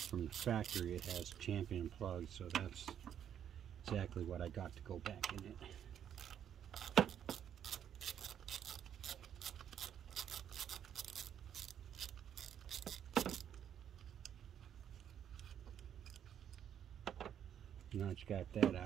the factory, it has champion plugs, so that's exactly what I got to go back in it. Now that you got that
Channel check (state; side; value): quieter; left; 9.4 dB